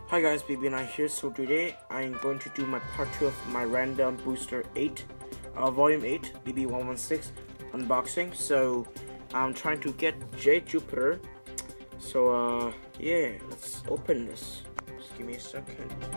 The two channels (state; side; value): inverted; both; correlation -1.00